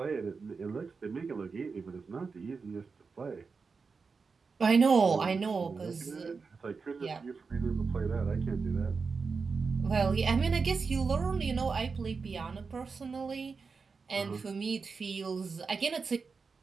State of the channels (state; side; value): quieter; left; 4.9 dB